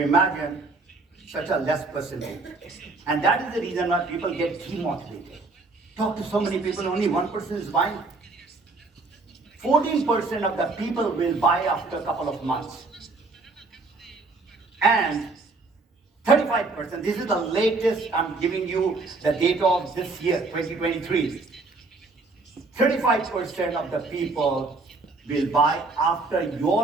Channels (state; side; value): quieter; left; 3.6 dB